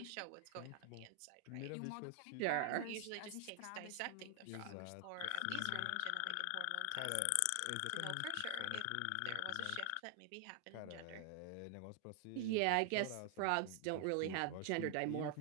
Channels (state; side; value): different; both; correlation 0.00